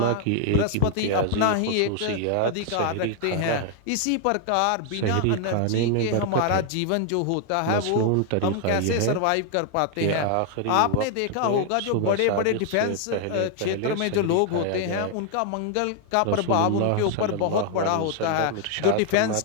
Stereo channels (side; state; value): both; different; correlation 0.00